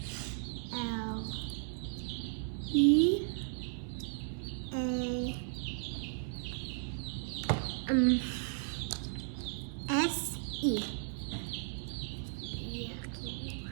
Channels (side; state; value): left; silent; 54 dB below the other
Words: L E A S E.